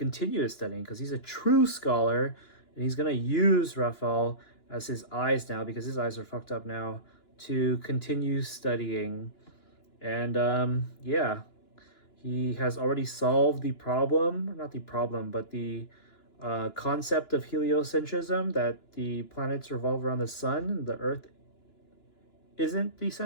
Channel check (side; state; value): right; late; 2.9 ms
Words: his studying, because he's a true scholar, and he's gonna use Raphael as his eyes now, because his eyes are fucked up now, to continue studying. And yeah, he has already solved the problem, not the problem, but the concept of heliocentrism, that the planets revolve around the sun, the Earth isn't the